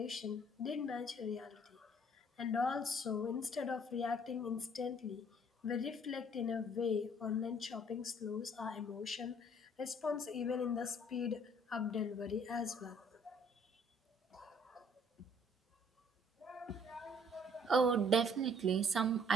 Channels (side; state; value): both; normal; correlation 0.59